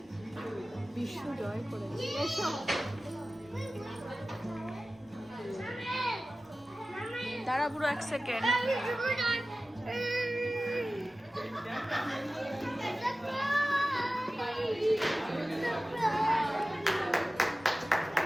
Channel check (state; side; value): normal; both; correlation 0.96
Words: বিশ্ব জয় করে দাঁড়া পুরো 1 সেকেন্ড।